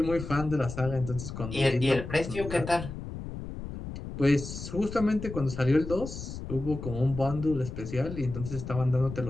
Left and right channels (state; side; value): noise; left; rumble, 9 dB below the sound